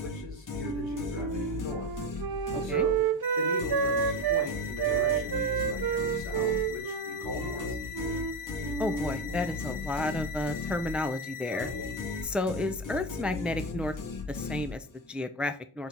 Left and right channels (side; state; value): both; normal; correlation 0.19